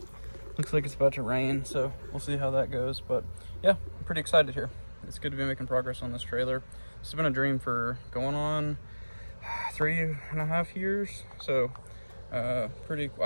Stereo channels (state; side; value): inverted; both; correlation -1.00